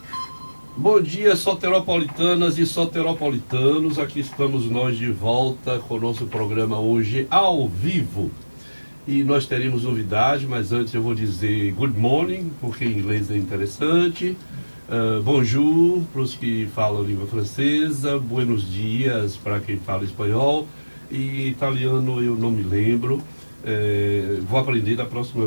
Bom dia, soteropolitanas e soteropolitanos. Aqui estamos nós de volta com o nosso programa hoje ao vivo. E nós teremos novidade, mas antes eu vou dizer good morning, porque em inglês é interessante. Bonjour para os que falam língua francesa, buenos dias para quem fala espanhol, e italiano eu não me lembro. Vou aprender da próxima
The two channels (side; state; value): both; inverted; correlation -1.00